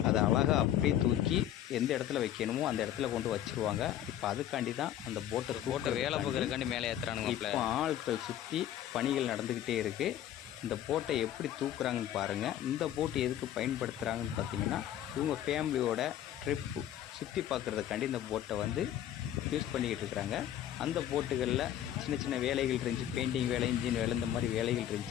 அதை அழகாக அப்படியே தூக்கி எந்த இடத்துல வைக்கணுமோ அந்த இடத்துல கொண்டு வச்சுருவாங்க. இப்போ அதுக்காண்டி தான் அந்த போட்டை வேலை பார்க்குறதுக்காண்டி மேலே ஏற்றுறானுங்க. இப்போ ஆட்கள் சுற்றி பணிகள் நடந்துக்கிட்டே இருக்குது. இந்த போட்டை எப்படி தூக்குறாங்கன்னு பாருங்கள். இந்த போட்டு எதுக்கு பயன்படுத்துகிறாங்கன்னு பார்த்திங்கன்னா, இவங்க ஃபேமிலியோட ட்ரிப்பு சுற்றி பார்க்குறதுக்காண்டி இந்த போட்டை வந்து யூஸ் பண்ணிக்கிட்டு இருக்கிறாங்க. அந்த போட்டுகளில் சின்ன சின்ன வேலைகள் இருந்துச்சு, பெயிண்டிங் வேலை, இன்ஜின் வேலை, இந்த மாதிரி வேலைகள்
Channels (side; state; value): right; quieter; 11.4 dB